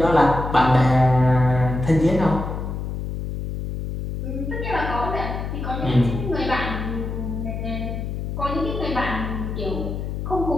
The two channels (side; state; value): left; noise; hum, 5 dB below the sound